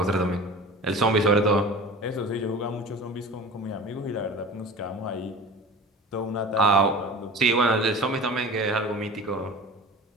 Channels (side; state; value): both; normal; correlation 0.37